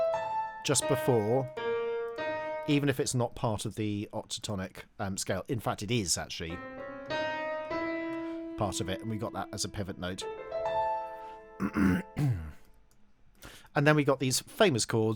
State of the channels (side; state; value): both; identical; correlation 1.00